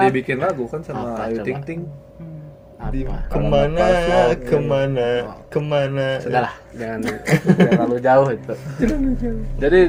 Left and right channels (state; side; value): identical; both; correlation 1.00